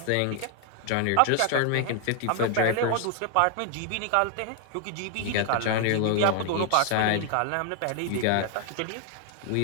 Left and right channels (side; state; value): both; different; correlation 0.00